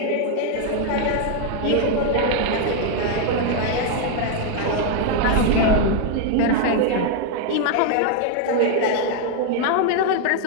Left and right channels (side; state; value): both; different; correlation 0.00